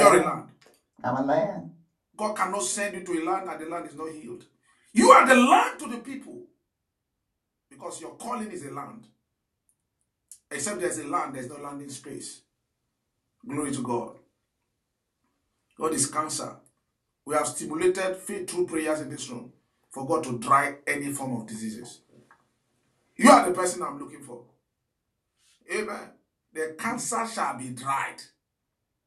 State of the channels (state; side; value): identical; both; correlation 1.00